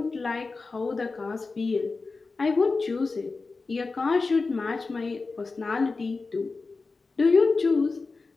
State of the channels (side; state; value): right; quieter; 4.0 dB